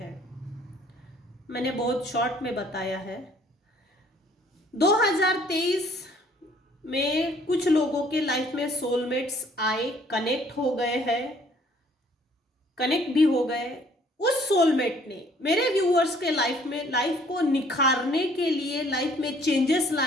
मैंने बहुत शॉर्ट में बताया है। 2023 में कुछ लोगों के लाइफ में सोलमेट्स आए, कनेक्ट हो गए हैं, कनेक्ट भी हो गए। उस सोलमेट ने मेरे व्यूअर्स के लाइफ में, लाइफ को निखारने के लिए, लाइफ में चेंजेस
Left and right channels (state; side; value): normal; both; correlation 0.59